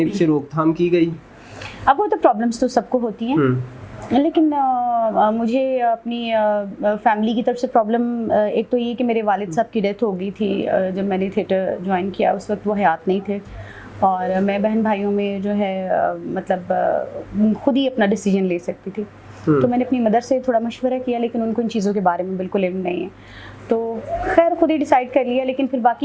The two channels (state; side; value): identical; both; correlation 1.00